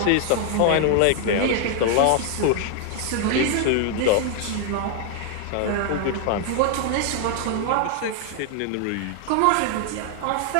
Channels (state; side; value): different; both; correlation 0.00